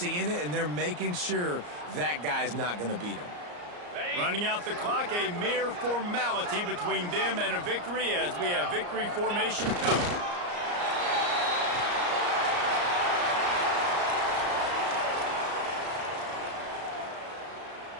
it, and they're making sure that guy's not going to beat him. Running out the clock, a mere formality between them and a victory as we have victory formation covered.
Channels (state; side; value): late; left; 34 ms